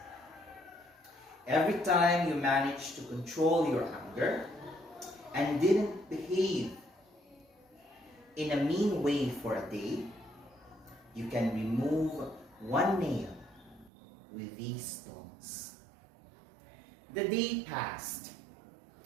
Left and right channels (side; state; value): left; drops out; at 13.9 s